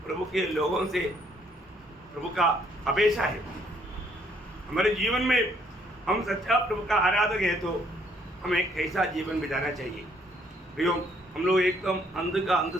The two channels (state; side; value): normal; both; correlation 0.67